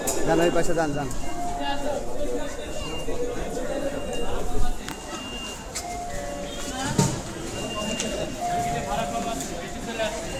যান, ওই পাশে যান যান।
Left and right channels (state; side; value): identical; both; correlation 1.00